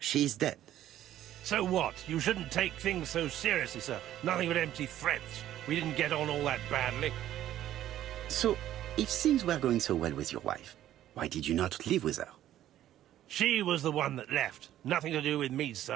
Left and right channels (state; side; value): quieter; left; 12.5 dB